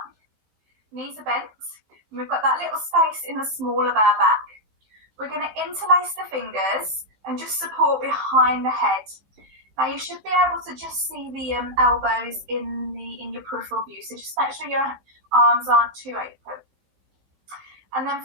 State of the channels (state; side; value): late; left; 15 ms